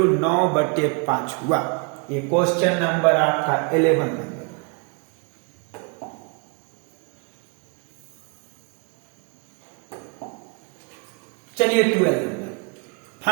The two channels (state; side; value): quieter; left; 34.3 dB